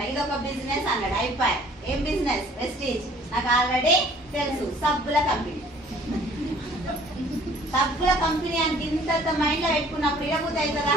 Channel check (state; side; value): normal; both; correlation 0.55